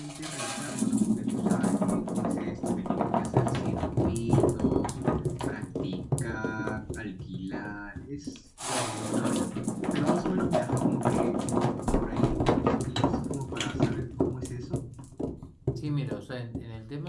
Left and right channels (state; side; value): identical; both; correlation 1.00